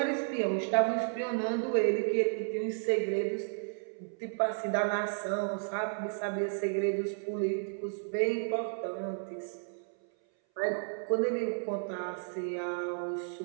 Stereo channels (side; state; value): left; silent; 56 dB below the other